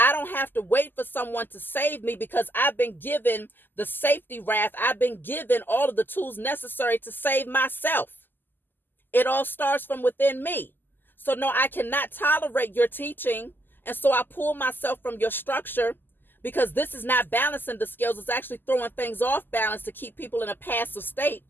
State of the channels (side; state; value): right; late; 0.092 ms